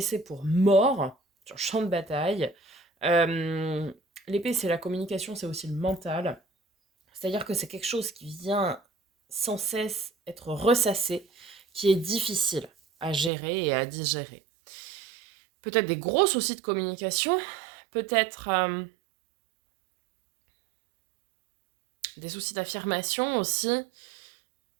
pour mort sur le champ de bataille. L'épée, c'est la communication, c'est aussi le mental. C'est-à-dire que c'est quelque chose qui vient sans cesse être ressassé, qui est difficile à gérer et à digérer. Peut-être des gros soucis de communication, peut-être des soucis d'affirmation aussi,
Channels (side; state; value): left; drops out; at 13.3 s